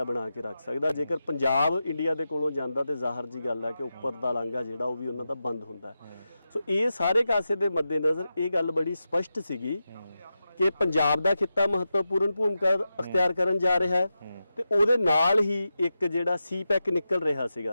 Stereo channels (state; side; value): inverted; both; correlation -0.90